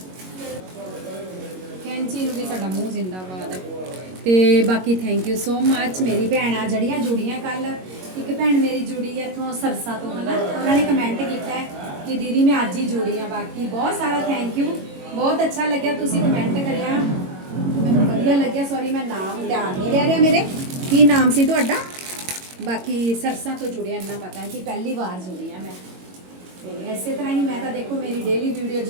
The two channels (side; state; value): left; late; 22 ms